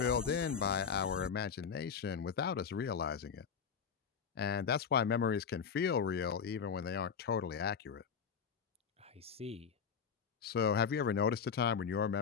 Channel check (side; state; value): right; quieter; 6.7 dB